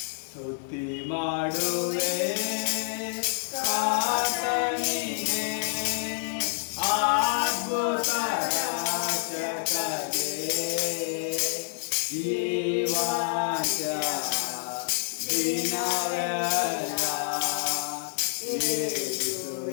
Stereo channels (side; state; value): right; silent; digital silence